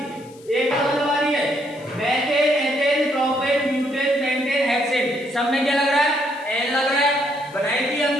एक डबल वाली है, methane ethane propane butane pentane hexane, सब में क्या लग रहा है एन लग रहा है, बनाई थी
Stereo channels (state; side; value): noise; left; hiss, 25 dB below the sound